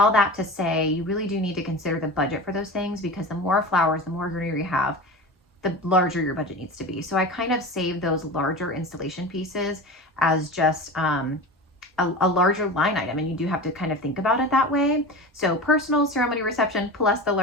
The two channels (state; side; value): normal; both; correlation 0.30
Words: that to say, you really do need to consider the budget for those things, because the more flowers, the more greenery you have, the larger your budget needs to be. So I kind of save those larger installation pieces as just a larger line item, and you do have to kind of think about it that way. So personal, ceremony, reception, plus the